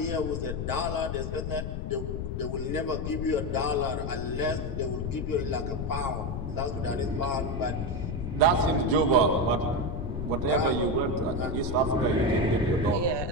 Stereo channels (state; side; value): noise; left; rumble, 3 dB below the sound